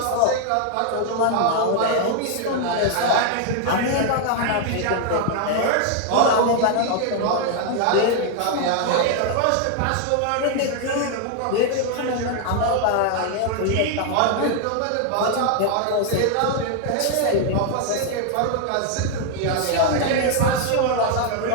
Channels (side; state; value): both; different; correlation 0.00